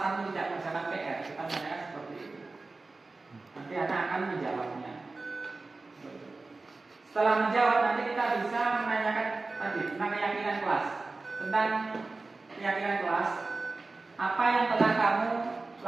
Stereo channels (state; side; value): quieter; left; 3.5 dB